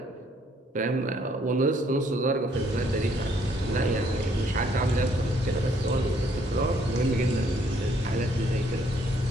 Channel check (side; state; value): both; normal; correlation 0.67